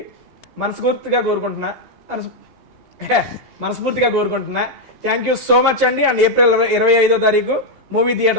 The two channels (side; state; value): right; late; 2.8 ms